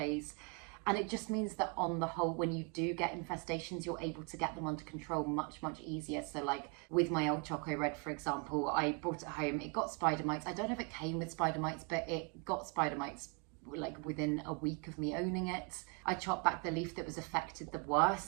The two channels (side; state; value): left; quieter; 35.9 dB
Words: And it just means that on the whole, when you do get infestations, you're able to get them under control much easier. So like with my old Choco Red, for example, I brought it home, it got spider mites. I don't know if it came with spider mites, but it got spider mites like within a week of me owning it. I chopped back the leaf that was affected the